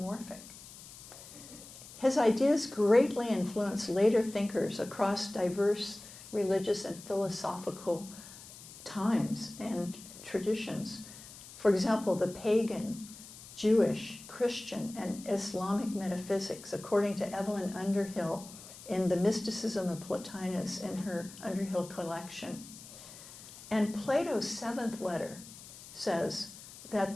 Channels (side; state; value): left; noise; hiss, 16 dB below the sound